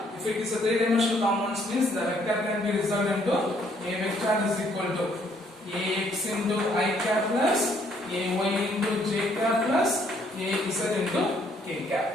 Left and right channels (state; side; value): normal; both; correlation 0.67